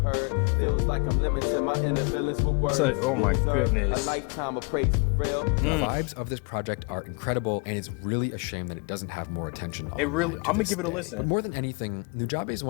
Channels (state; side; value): quieter; right; 34.0 dB